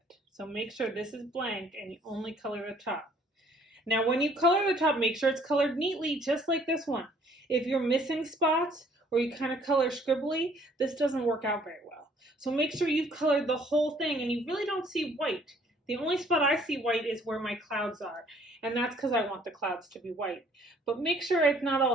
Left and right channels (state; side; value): normal; both; correlation 0.60